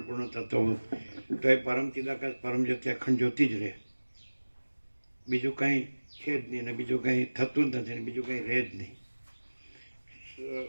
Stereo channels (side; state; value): both; inverted; correlation -1.00